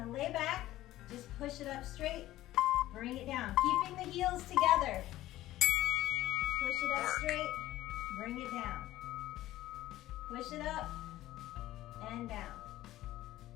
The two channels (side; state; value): right; quieter; 15.2 dB